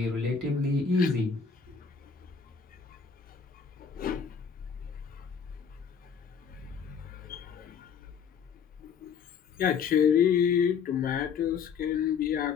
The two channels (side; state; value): right; quieter; 6.5 dB